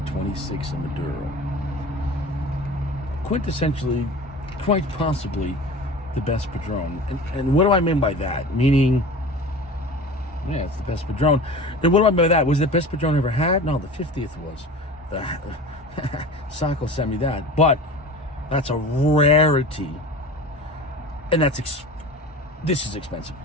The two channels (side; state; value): both; normal; correlation 0.36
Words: in Maduro. Quintessentially, quite possibly, the best Padron. And what do I mean by that? Meaning, yeah, it's the best Padron. Then what do I mean by that? Was it the best Padron I ever had? No, the 50th was. Sacco sent me that. But that's a rarity. And this is expensive.